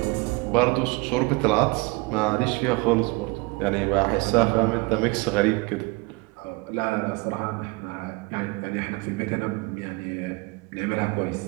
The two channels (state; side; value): quieter; left; 25.7 dB